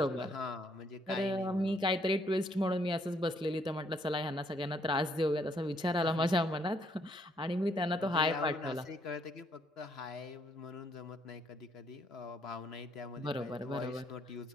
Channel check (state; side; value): normal; both; correlation 0.70